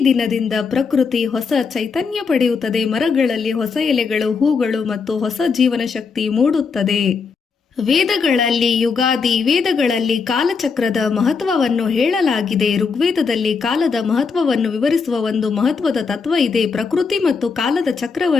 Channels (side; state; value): right; quieter; 5.2 dB